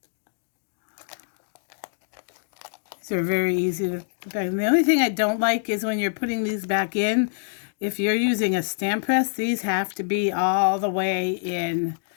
these are very easy to put back. And the only thing I don't like is when you're putting these back in, if you're using a stamp press, these have to be all the way in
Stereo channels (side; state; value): right; silent; digital silence